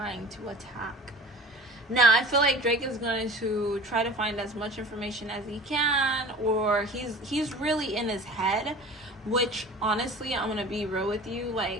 to attack. Now, I feel like Drake is going to try to find as much information as he can, or he's really in his head, which, honestly, I'm going to be real with you,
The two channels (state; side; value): normal; both; correlation 0.41